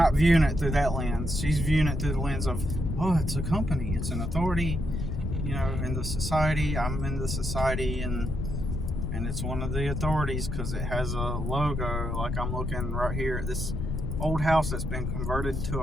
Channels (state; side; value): noise; left; rumble, 3 dB below the sound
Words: viewing it through that lens. She's viewing it through the lens of, it's a company, it's an authority, in the society. I'm in the society, and it's one of the authorities because it has a logo. Like I'm looking right here at this old house that's been converted to